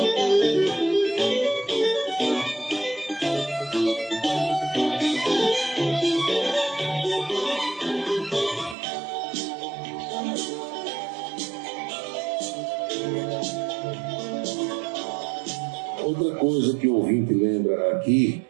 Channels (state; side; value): drops out; left; at 8.8 s